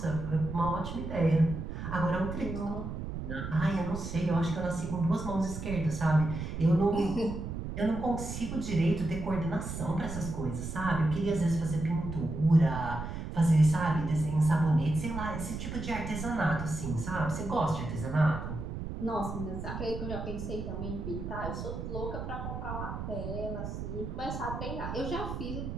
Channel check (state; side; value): noise; right; rumble, 6 dB below the sound